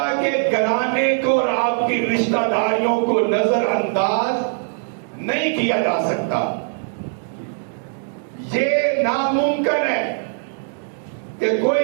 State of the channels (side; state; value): left; silent; digital silence